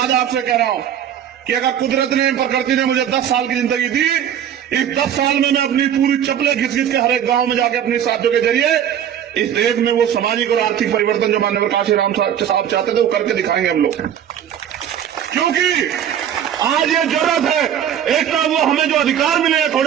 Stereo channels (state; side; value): quieter; left; 9.7 dB